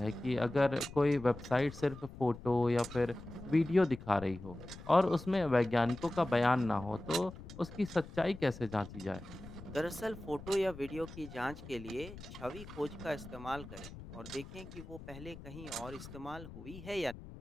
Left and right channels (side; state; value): left; noise; rumble, 14 dB below the sound